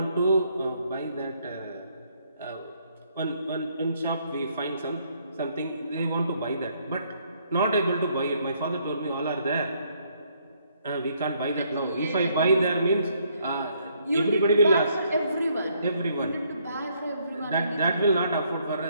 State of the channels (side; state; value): both; inverted; correlation -0.70